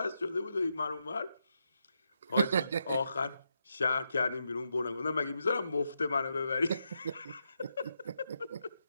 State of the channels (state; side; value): inverted; both; correlation -0.83